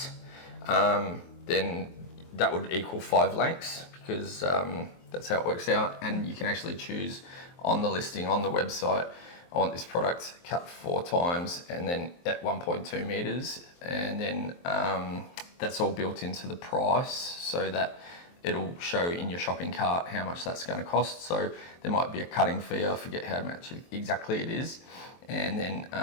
then that would equal 5 lengths, because that's how it works out. And you can actually choose on the listing on the website, I want this product cut 4 times and then at 1.2 meters, and then that's all built into the price, so that it'll show in your shopping cart how much that's going to cost. So there might be a cutting fee, I forget how much exactly it is, and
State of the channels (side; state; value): right; late; 23 ms